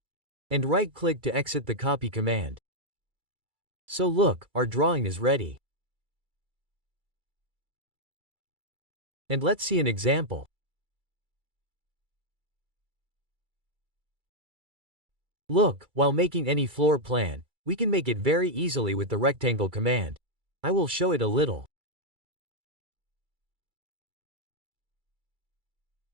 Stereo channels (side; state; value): left; late; 2.3 ms